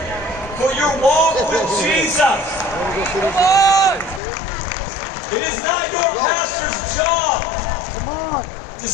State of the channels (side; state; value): right; drops out; at 4.2 s